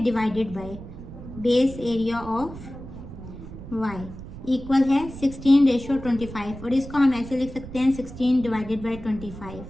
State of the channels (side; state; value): right; noise; rumble, 13 dB below the sound